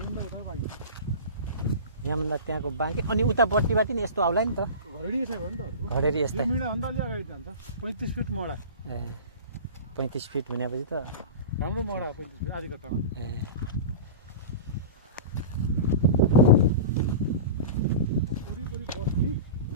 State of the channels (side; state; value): both; inverted; correlation -0.31